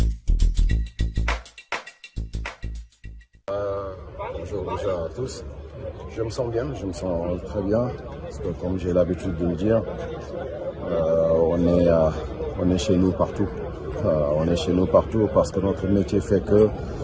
Bonjour déjà à tous. Je me sens bien, je me sens très bien, parce que comme j'ai l'habitude de le dire, on est chez nous partout. On est chez nous partout parce que notre métier fait que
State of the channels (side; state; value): both; identical; correlation 1.00